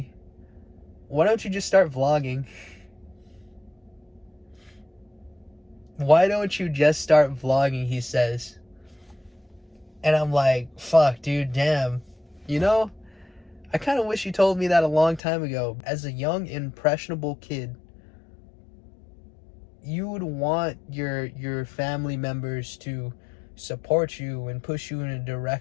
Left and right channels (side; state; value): right; drops out; at 15.2 s